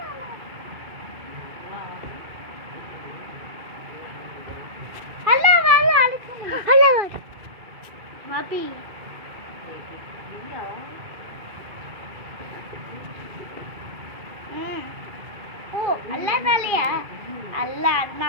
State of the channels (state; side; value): late; left; 2.5 ms